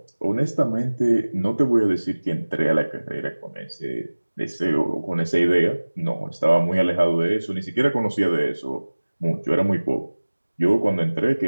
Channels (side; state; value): both; inverted; correlation -1.00